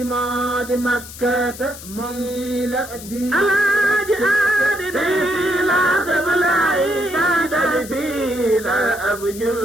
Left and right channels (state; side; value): noise; left; hiss, 14 dB below the sound